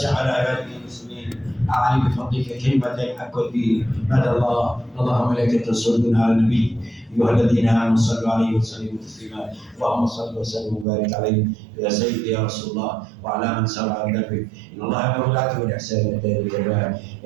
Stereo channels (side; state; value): left; drops out; at 10.9 s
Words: على عبادك المسلمين، أعلي بفضلك كلمة الحق والدين. مدى الله. اللهم ملائكته يصلون على النبي، أيها الذين آمنوا صلوا عليه وسلموا تسليما. اللهم صل وسلم وبارك عليه يا سيدي يا رسول الله وعلى من سار على دربك. إن الله يأمر بالعدل والإحسان وإيتاء ذي القربى